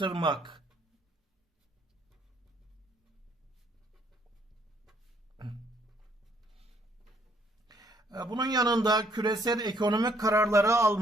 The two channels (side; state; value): both; normal; correlation 0.67